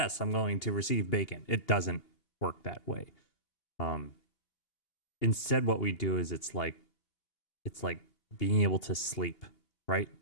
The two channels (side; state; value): right; late; 2.8 ms